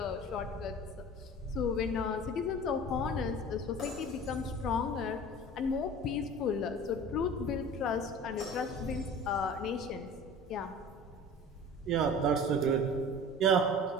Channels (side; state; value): both; normal; correlation 0.40